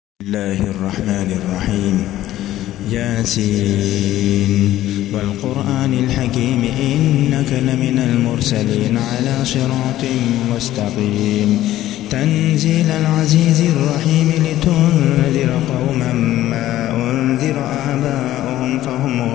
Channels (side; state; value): right; quieter; 14.2 dB